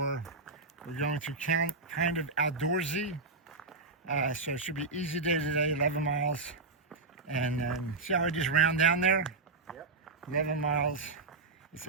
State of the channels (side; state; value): left; quieter; 3.7 dB